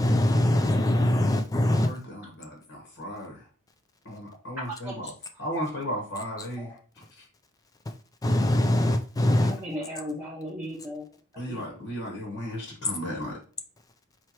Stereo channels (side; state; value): both; normal; correlation 0.83